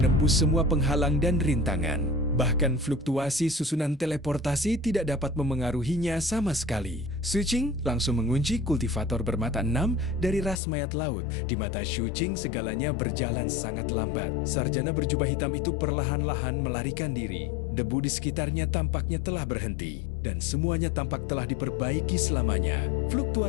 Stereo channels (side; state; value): right; drops out; at 10.6 s